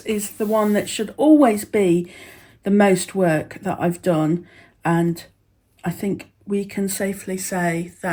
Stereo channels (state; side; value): identical; both; correlation 1.00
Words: is the one that should always be the most work that I've done, and I think we can safely say